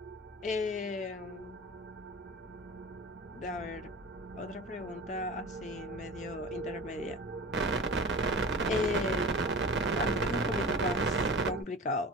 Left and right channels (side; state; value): both; normal; correlation 0.35